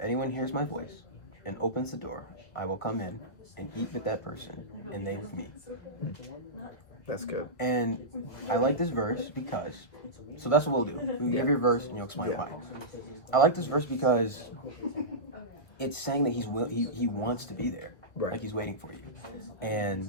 anyone hears my voice and opens the door, I will come in and eat with that person and they with me. That's good. And I like this verse because, so that's what we'll do. We'll give your verse and you'll explain Yeah. why. I like this verse because it's saying that he wants to be there. Right. Like he's waiting for you.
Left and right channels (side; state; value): right; late; 1.3 ms